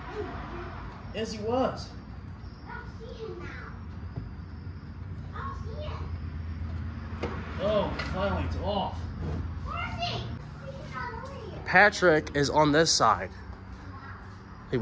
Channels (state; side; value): identical; both; correlation 1.00